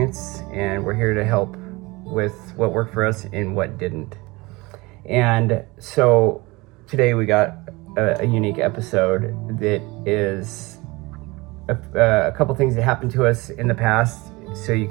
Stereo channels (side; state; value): left; quieter; 23.5 dB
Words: and we're here to help with what worked for us and what didn't. And so today we got a unique episode that is a couple things that happened to us in the past, so you